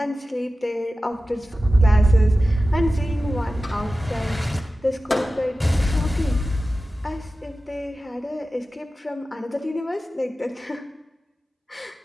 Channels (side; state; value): both; normal; correlation 0.95